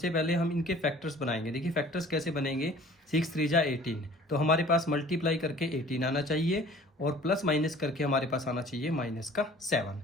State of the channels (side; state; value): both; normal; correlation 0.49